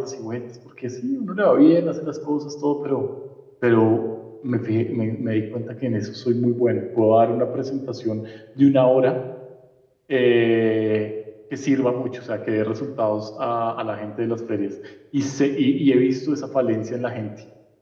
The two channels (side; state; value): both; identical; correlation 1.00